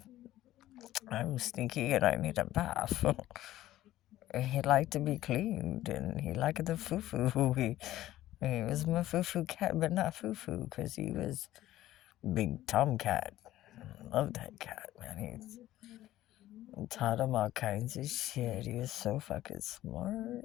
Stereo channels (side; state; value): right; quieter; 14.5 dB